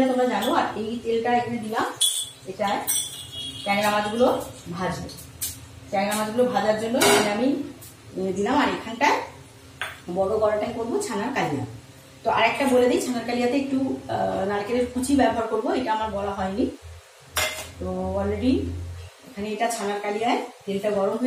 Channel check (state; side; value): identical; both; correlation 1.00